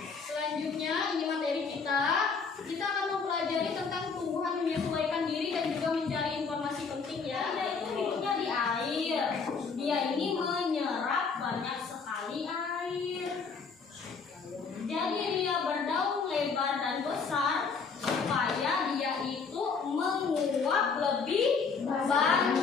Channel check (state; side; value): quieter; right; 5.2 dB